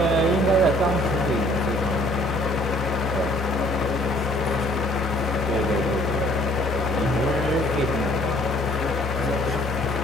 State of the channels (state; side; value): normal; both; correlation 0.59